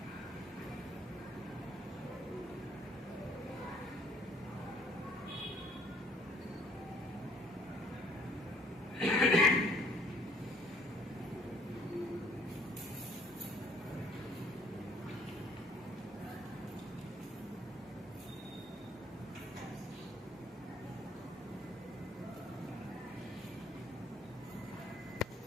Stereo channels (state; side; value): normal; both; correlation 0.61